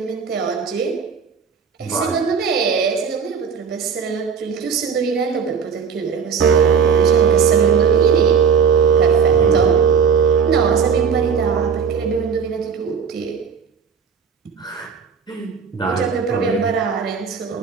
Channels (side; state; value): left; quieter; 6.4 dB